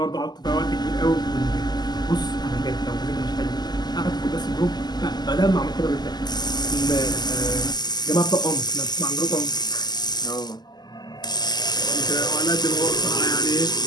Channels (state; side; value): late; right; 0.20 ms